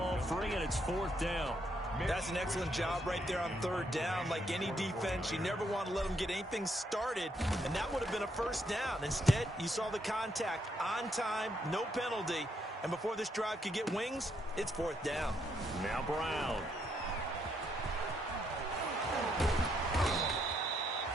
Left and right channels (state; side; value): normal; both; correlation 0.75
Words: free, and it's 4th down. That's an excellent job right there on 3rd down. Like any defense, you never want to let them get anything started, and that would have been a 1st down. Instead, you saw the contact on time, no penalty, and before this drive could get wings, it's 4th down. Now Brown.